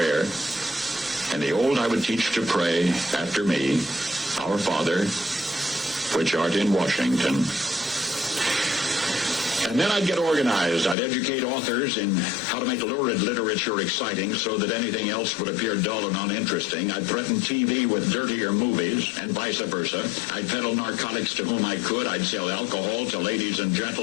And the old I would teach to pray after me, Our Father, which art in Washington. And then I'd get organized. I'd educate authors in how to make lurid literature exciting so that anything else would appear dull and uninteresting. I'd threaten TV with dirtier movies and vice versa. I'd peddle narcotics to whom I could. I'd sell alcohol to ladies and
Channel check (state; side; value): drops out; right; at 11.0 s